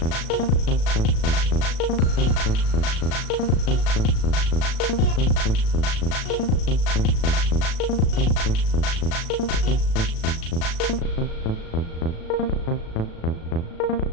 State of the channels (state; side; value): late; right; 36 ms